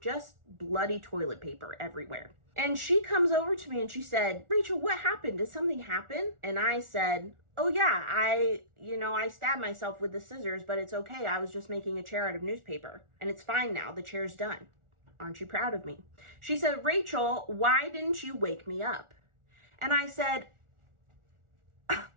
Just bloody toilet paper everywhere. And she comes over to me and she said, "Rachel, what happened? Did something happen?" And I said, "Oh yeah, I stabbed myself with the scissors, but it's okay. I was just making a chair out of newspaper. And it's fine now. The chair's done. Aren't you proud of me?" She said, "Rachel, why didn't you wake me up?" And I said,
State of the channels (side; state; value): left; late; 1.4 ms